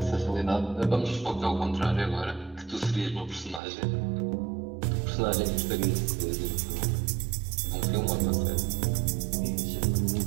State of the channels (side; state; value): left; drops out; at 3.6 s